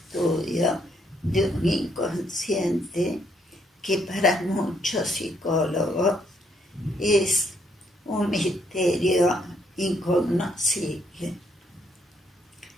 de un inconsciente que para muchos psicólogos es un misterio incognoscible.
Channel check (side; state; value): both; normal; correlation 0.72